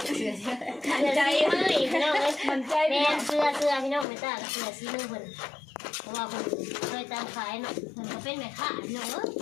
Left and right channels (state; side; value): drops out; right; at 4.0 s